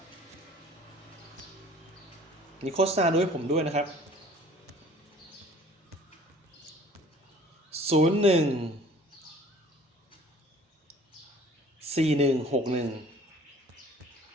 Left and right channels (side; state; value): both; normal; correlation 0.51